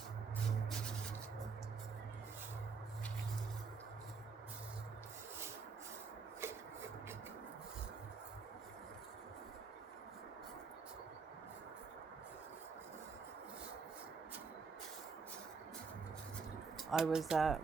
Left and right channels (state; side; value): quieter; left; 5.0 dB